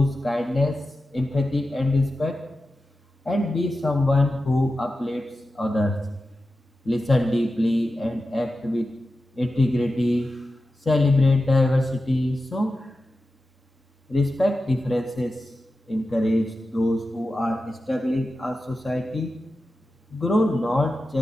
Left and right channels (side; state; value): both; normal; correlation 0.92